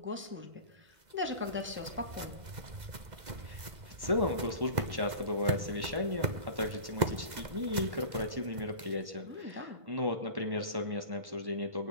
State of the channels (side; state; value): left; late; 2.0 ms